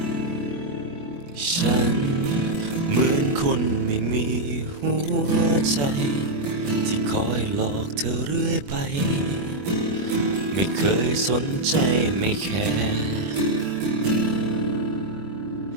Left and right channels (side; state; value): left; late; 21 ms